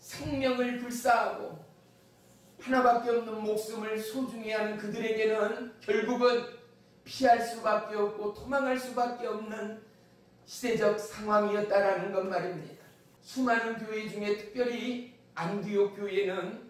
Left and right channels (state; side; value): identical; both; correlation 1.00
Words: 불사하고 하나밖에 없는 목숨을 소중히 하는 그들에게는 결국은 피할 수밖에 없고 도망할 수밖에 없는 시대적 상황이었다라는 것 말입니다. 수많은 교회 중에 특별히 안디옥